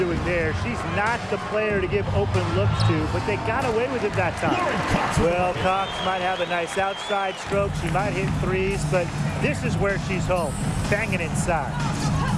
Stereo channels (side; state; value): both; identical; correlation 1.00